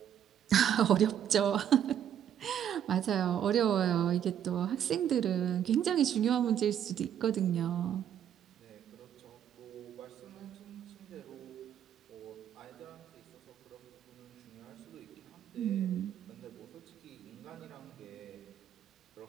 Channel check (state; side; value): quieter; left; 9.7 dB